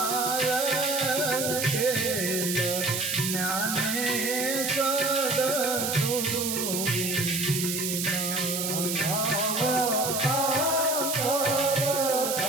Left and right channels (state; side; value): noise; right; hiss, 1 dB below the sound